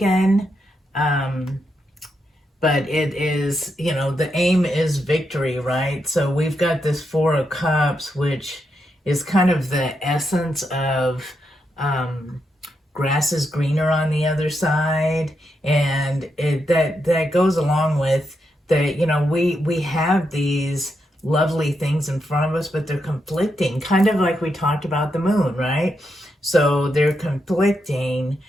but it is, you know, the aim is victory, right? So we've got this Four of Cups, which is kind of the essence of grass is greener on the other side, and that goes along with that. You know, we have these lovely things in front of us, but they're conflicting, kind of like we talked about the moon, right? So they're conflicting.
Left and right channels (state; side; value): normal; both; correlation 0.83